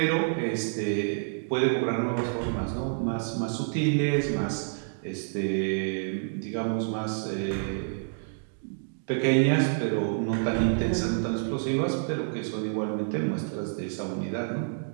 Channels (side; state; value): left; silent; digital silence